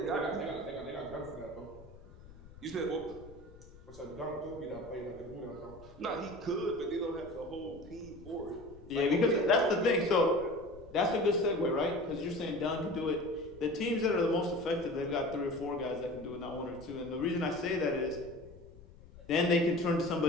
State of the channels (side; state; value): left; noise; rumble, 19 dB below the sound